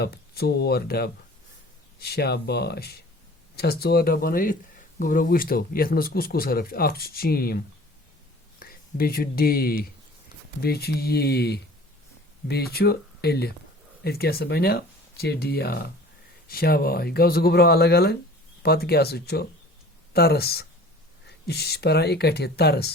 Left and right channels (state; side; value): normal; both; correlation 0.45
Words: 4 डब। शाबाश छस 4 डब बन गोबरो। वुच तो ये मज कुस कुस हरफ अख चीम, बे डे, बे ये, बे एलिफ। इत क्या बनो चिड़िया। शाबाश गो गोबरो अलग अलग। पत क्या तरस, यह पान इकट्ठे